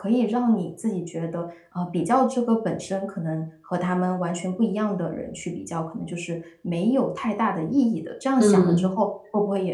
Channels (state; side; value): identical; both; correlation 1.00